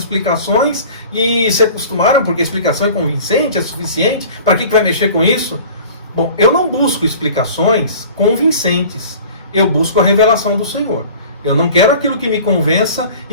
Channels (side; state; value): both; inverted; correlation -0.44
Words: e se acostumaram porque a explicação é convincente, é suficiente, para que vai mexer com isso? Bom, eu não busco explicações convincentes, eu busco a revelação do Senhor. Eu não quero aquilo que me convença